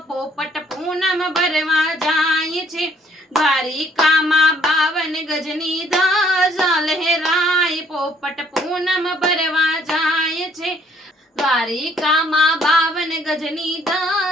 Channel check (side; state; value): both; normal; correlation 0.64